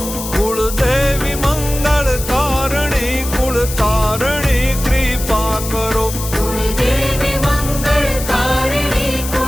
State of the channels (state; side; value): noise; left; hiss, 8 dB below the sound